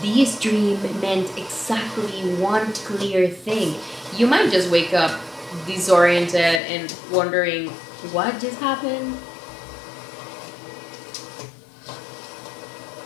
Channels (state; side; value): drops out; right; at 6.6 s